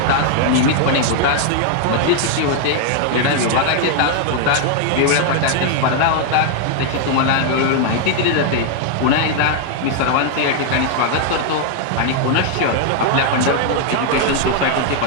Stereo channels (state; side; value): different; both; correlation 0.00